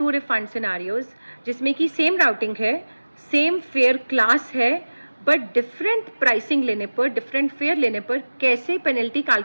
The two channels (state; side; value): inverted; both; correlation -1.00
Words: refund scenarios, जिसमें कि same routing है, सेम फेयर क्लास है, बट डिफरेंट प्राइसिंग लेने पर, डिफरेंट फेयर लेने पर कैसे पेनल्टी